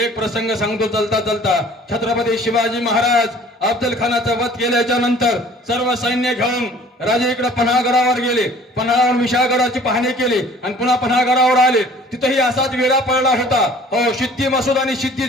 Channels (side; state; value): both; normal; correlation 0.51